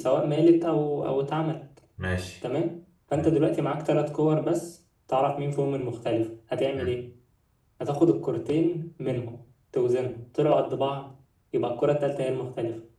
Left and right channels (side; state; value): both; identical; correlation 1.00